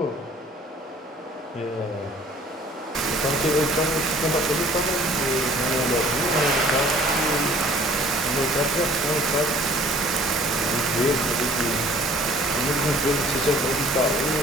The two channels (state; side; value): normal; both; correlation 0.53